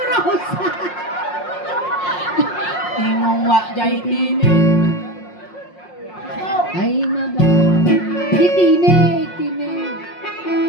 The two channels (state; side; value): late; right; 5.6 ms